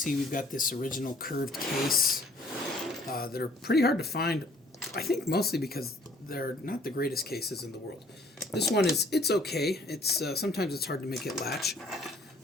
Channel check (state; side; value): normal; both; correlation 0.59